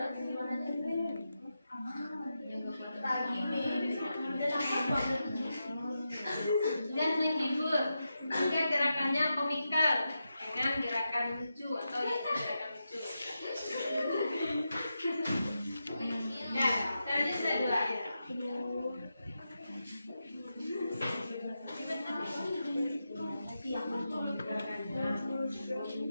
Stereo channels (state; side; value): inverted; both; correlation -0.88